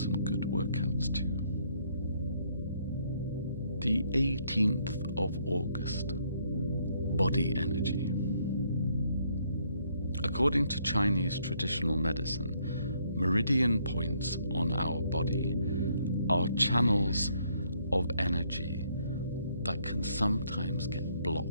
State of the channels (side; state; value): both; inverted; correlation -0.69